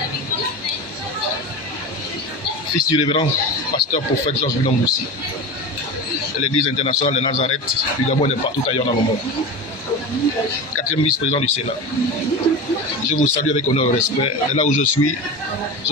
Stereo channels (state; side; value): late; right; 1.2 ms